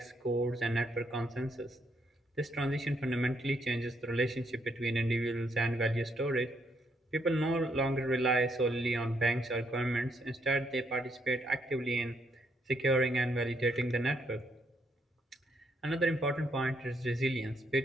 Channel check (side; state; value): both; normal; correlation 0.74